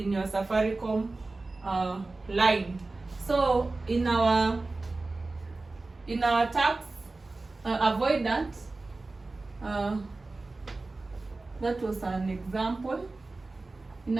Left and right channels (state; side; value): quieter; left; 3.3 dB